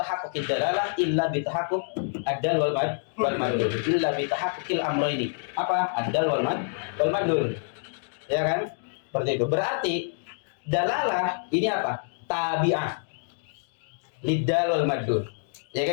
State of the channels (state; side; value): silent; right; digital silence